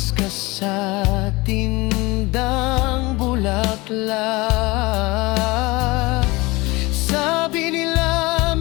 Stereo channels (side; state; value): right; quieter; 22.8 dB